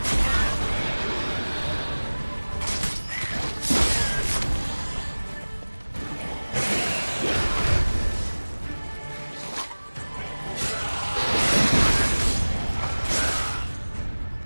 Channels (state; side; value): inverted; both; correlation -1.00